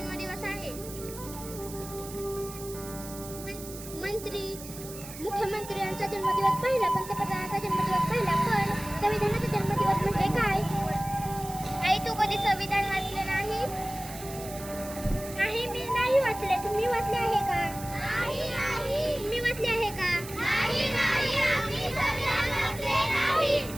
आहे. मंत्री मुख्यमंत्री यांचा जन्मदिवस पहिला, पंतप्रधानाचा जन्मदिवस पहिला, पण संविधानाचा जन्मदिवस म्हणजे काय? आई तू कधी संविधान वाचले नाही? नाही, मी नाही वाचले. तुम्ही वाचले आहे का? तुम्ही वाचले आहे का?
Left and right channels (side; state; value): right; noise; hiss, 13 dB below the sound